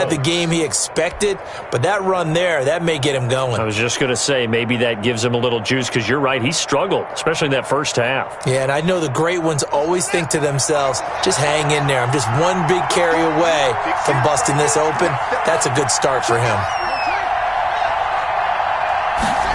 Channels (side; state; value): both; identical; correlation 1.00